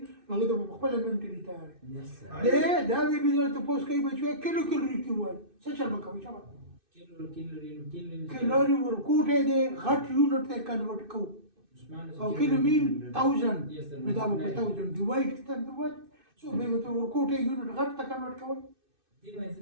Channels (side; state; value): left; late; 2.6 ms